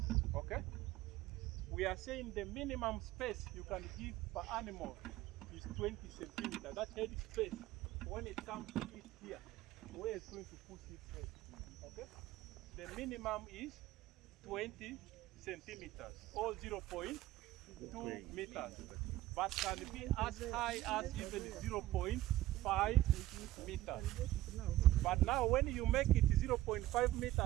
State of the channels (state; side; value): quieter; left; 15.6 dB